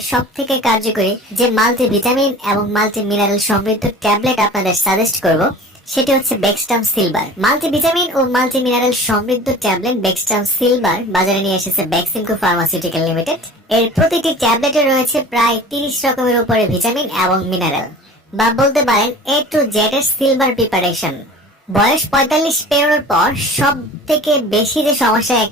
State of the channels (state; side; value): normal; both; correlation 0.41